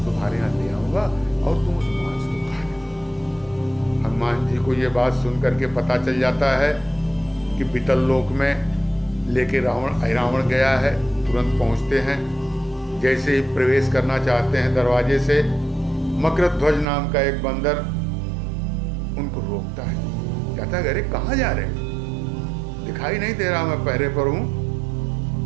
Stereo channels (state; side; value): drops out; left; at 16.9 s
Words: तुम्हारे यहाँ ले आऊंगा और तुम उस मांस को खा लेना। हनुमान जी को ये बात सुनकर के पता चल जाता है कि बीतल लोक में लेके रावण गया है। तुरंत पहुंचते हैं। जैसे ही प्रवेश करना चाहते हैं दरवाजे से, मकरध्वज नाम का एक बंदर उनको रोकता है। कहता है अरे कहाँ जा रहे हैं, दिखाई नहीं दे रहा, मैं पहरे पर हूं।